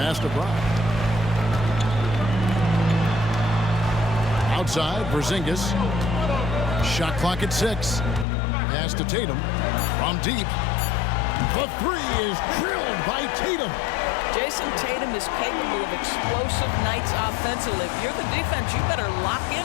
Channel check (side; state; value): right; drops out; at 8.2 s